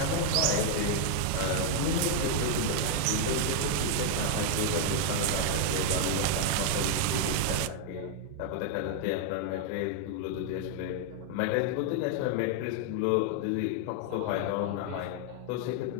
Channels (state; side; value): different; both; correlation 0.00